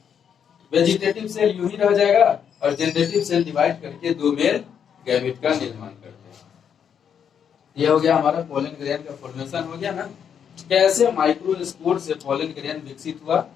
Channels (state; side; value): quieter; right; 8.0 dB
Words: वेजिटेटिव सेल यूं ही रह जाएगा और जनरेटिव सेल डिवाइड करके 2 मेल गैमीट का निर्माण करते हैं। ये हो गया हमारा पोलन ग्रेन का फॉर्मेशन हो गया ना। कैसे माइक्रोस्पोर से पोलन ग्रेन विकसित हुआ